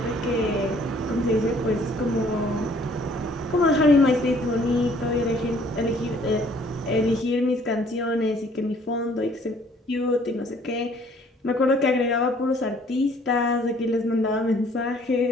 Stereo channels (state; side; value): normal; both; correlation 0.59